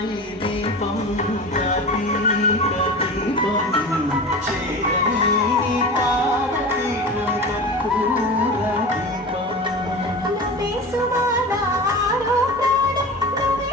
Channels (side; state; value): both; normal; correlation 0.31